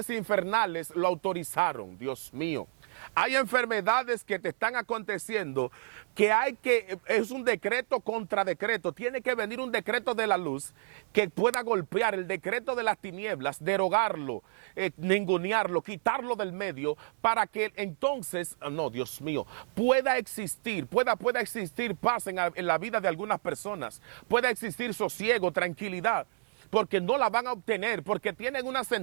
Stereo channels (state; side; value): silent; left; 58 dB below the other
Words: infernales lo autorizaron, Dios mío. Hay enfermedades que te están aconteciendo es un decreto contra decreto. Tiene que venir un decreto de la luz que pueda golpear el decreto de las tinieblas, derogarlo, ningunearlo, quitarlo del medio para que entonces, no, Dios mío, pueda existir paz en la vida de algunas personas, pueda existir sosiego, tranquilidad. Porque no la van a obtener, porque tienen una